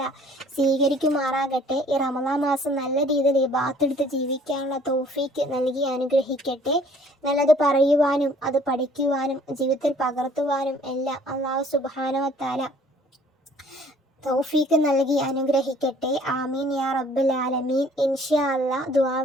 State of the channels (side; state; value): both; normal; correlation 0.56